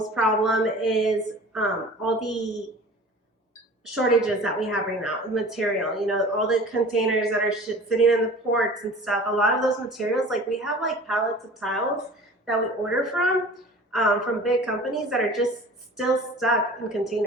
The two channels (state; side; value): normal; both; correlation 0.42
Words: problem is all the shortages that we have right now, material, you know, all the containers that are sitting in the ports and stuff. A lot of those materials, like we have like pallets of tiles that we order from big companies that are just still stuck in